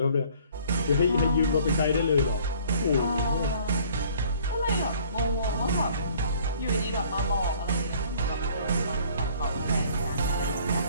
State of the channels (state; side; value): inverted; both; correlation -0.55